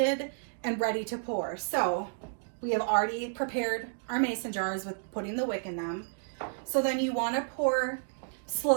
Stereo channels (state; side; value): silent; left; digital silence